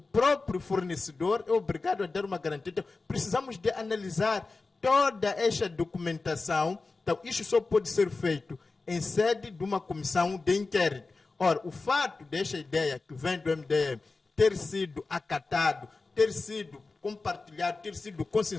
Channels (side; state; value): right; quieter; 3.8 dB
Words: fornecedor é obrigado a dar uma garantia. Então, precisamos de analisar toda esta documentação. Então, isso só pode ser feito em sede de uma comissão de inquérito. Ora, o fato desta ideia que vem do MDM ter sido acatado, ter sido compartilhado, ter sido